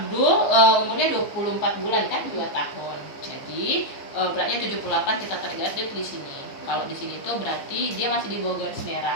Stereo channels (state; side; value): late; right; 15 ms